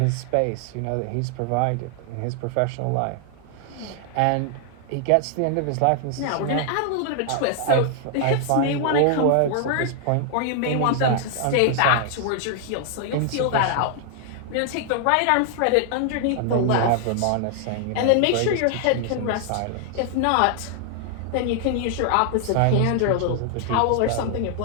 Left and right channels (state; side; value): different; both; correlation 0.00